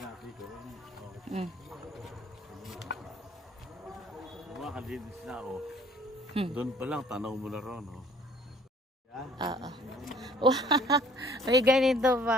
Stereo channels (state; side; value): normal; both; correlation 0.56